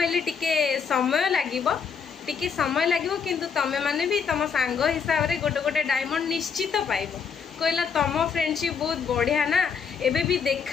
टिके समय लागिबो, टिके समय लागिबो, किंतु तमे माने भी तम सांग हिसाब रे गोटे गोटे डायमंड निश्चित पाइबो। कहला तम फ्रेंडशिप बहुत बढ़िया ना, एबे भी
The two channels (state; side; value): quieter; right; 6.3 dB